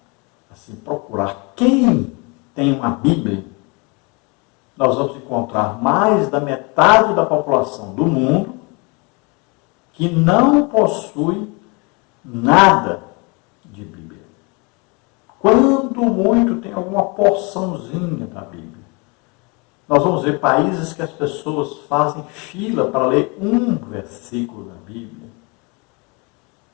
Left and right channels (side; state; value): right; quieter; 29.8 dB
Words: assim, procurar quem tem uma Bíblia, nós vamos encontrar mais da metade da população do mundo que não possui nada de Bíblia. Quando muito tem alguma porçãozinha da Bíblia. Nós vamos ver países que as pessoas fazem fila para ler um versículo da Bíblia.